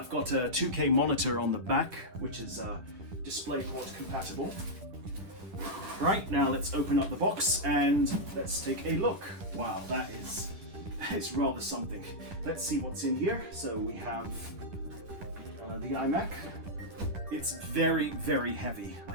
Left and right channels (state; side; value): late; left; 10 ms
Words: got a 2K monitor on the back, which is DisplayPort compatible. Right, now let's open up the box and let's take a look. Wow, that is rather something. Let's see what's in here. So we have the iMac. It's very, very heavy, I